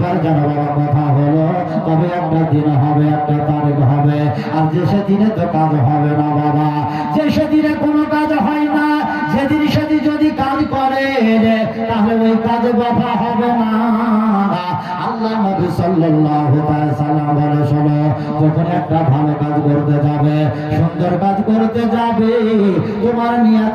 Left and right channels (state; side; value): identical; both; correlation 1.00